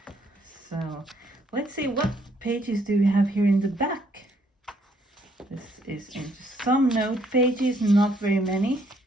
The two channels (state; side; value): normal; both; correlation 0.69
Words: So let's see, what pages do we have here in the back? This is into some note pages, not very many.